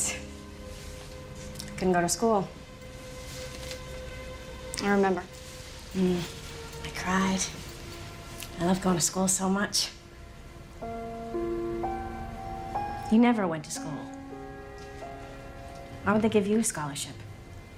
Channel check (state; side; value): identical; both; correlation 1.00